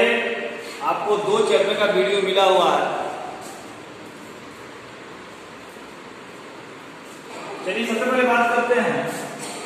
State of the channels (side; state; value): both; identical; correlation 1.00